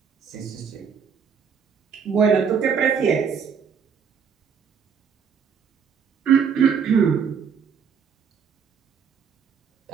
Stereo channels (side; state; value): left; quieter; 6.7 dB